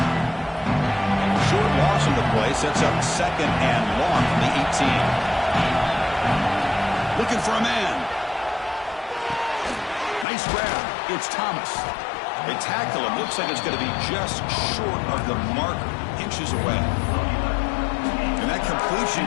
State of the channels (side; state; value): right; drops out; at 10.2 s